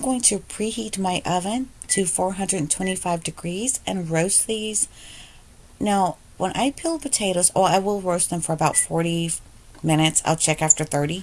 going to preheat my oven to 425 degrees and roast these. Now, when I peel potatoes, I will roast them for about 40 minutes. I'll check after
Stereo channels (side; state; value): both; identical; correlation 1.00